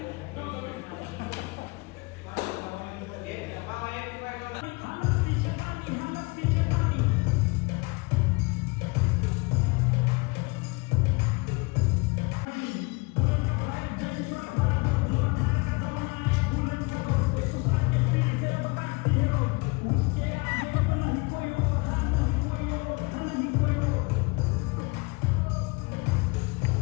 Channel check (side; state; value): right; quieter; 27.4 dB